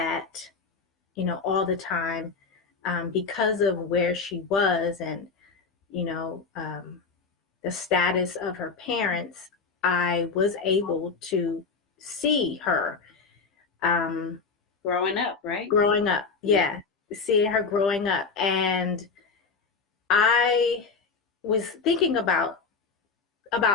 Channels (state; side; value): quieter; right; 4.8 dB